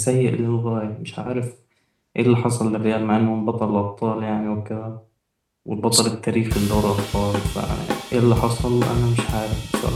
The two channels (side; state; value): both; identical; correlation 1.00